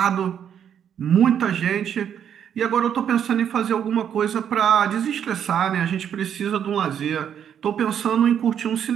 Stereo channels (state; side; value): quieter; left; 8.8 dB